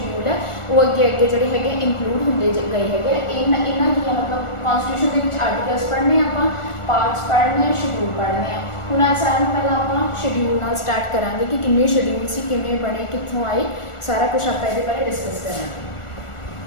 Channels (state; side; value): late; right; 1.4 ms